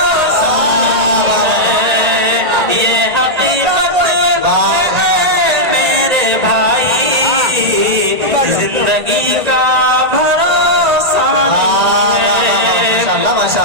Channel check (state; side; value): late; left; 1.8 ms